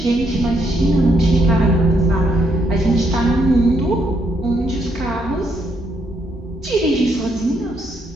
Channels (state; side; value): normal; both; correlation 0.75